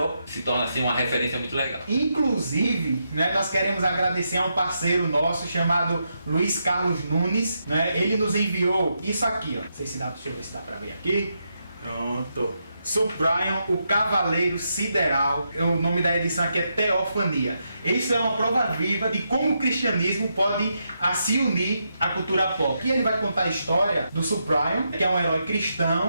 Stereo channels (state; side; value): inverted; both; correlation -0.83